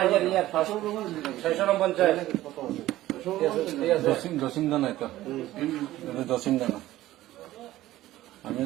জসিমদা নাই তো? জসিমদা না,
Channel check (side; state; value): left; quieter; 15.4 dB